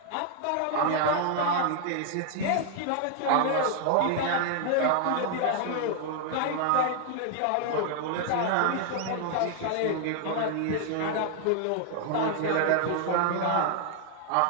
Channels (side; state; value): both; different; correlation 0.00